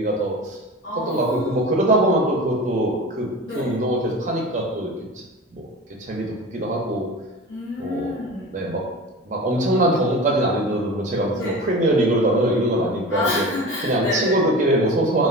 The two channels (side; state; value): both; normal; correlation 0.33